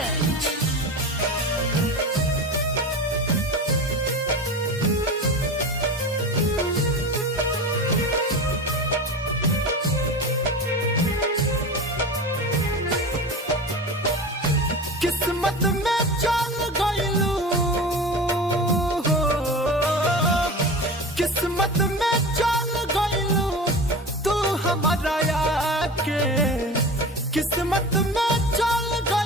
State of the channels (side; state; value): both; normal; correlation 0.31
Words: किस्मत में चल गइलू, किस्मत में चल गइलू तू हमारा आके, किस्मत में चल